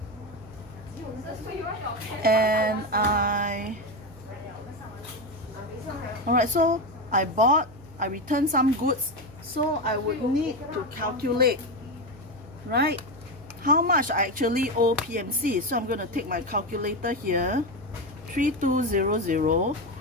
and alright, so I returned some goods, so I would need to calculate, right, how much I actually owe PMC. So I'm going to take my calculator here, 3200,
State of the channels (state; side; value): noise; right; hum, 22 dB below the sound